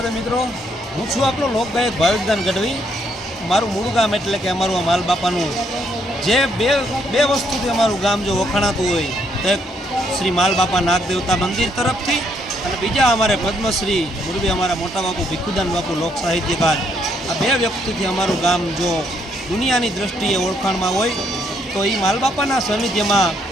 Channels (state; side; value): normal; both; correlation 0.72